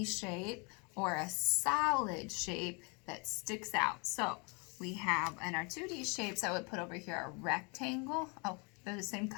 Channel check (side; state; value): right; quieter; 32.4 dB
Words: shape or a solid shape that sticks out. So we have in our 2D shapes, I would put over here a rectangle. Oh, they're the same